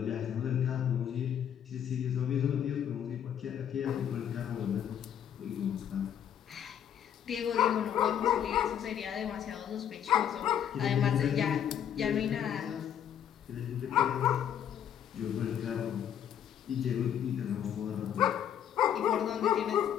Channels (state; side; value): quieter; right; 9.4 dB